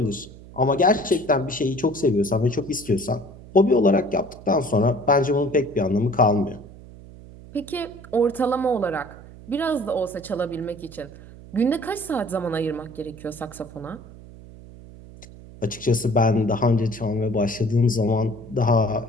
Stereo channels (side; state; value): right; noise; hum, 18 dB below the sound